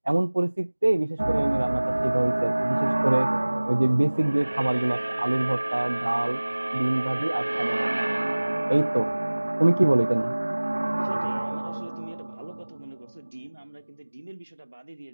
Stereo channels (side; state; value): both; inverted; correlation -1.00